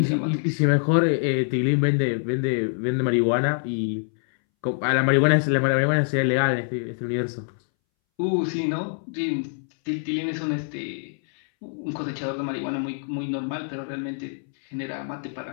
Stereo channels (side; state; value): right; silent; 62 dB below the other